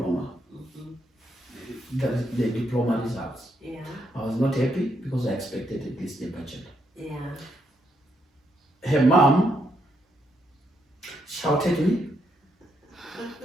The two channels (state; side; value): normal; both; correlation 0.77